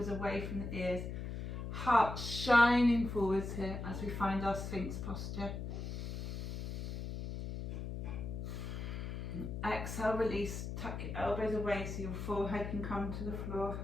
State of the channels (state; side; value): noise; left; hum, 5 dB below the sound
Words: away from the ears. Heart shining forwards here as we find our Sphinx posture. Exhale, release, tuck your elbows away so your forehead can come to the floor.